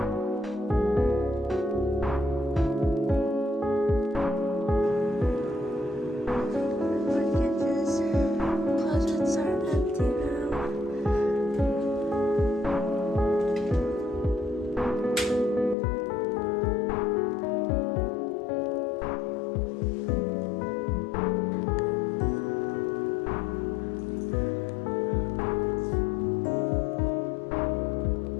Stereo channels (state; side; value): drops out; right; at 15.8 s